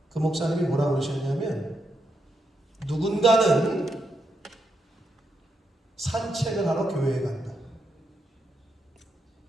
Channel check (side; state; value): both; normal; correlation 0.82